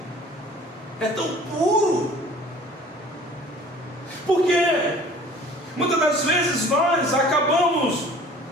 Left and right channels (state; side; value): normal; both; correlation 0.49